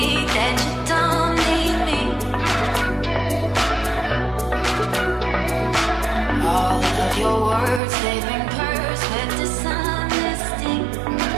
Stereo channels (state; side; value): drops out; left; at 7.8 s